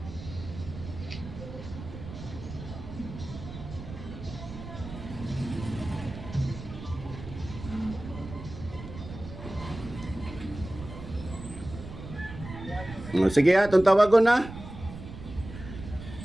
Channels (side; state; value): right; noise; rumble, 11 dB below the sound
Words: O, sige ha, itong tawagon na.